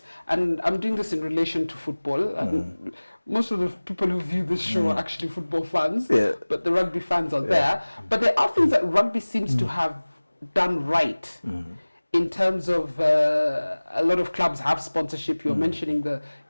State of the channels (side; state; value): both; inverted; correlation -1.00